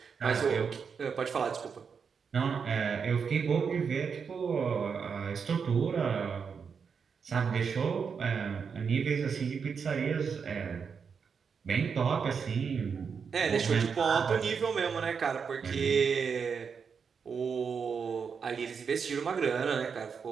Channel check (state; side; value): quieter; left; 6.1 dB